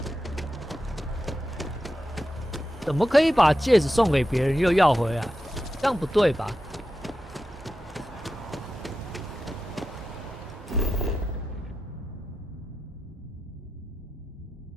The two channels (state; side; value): normal; both; correlation 0.90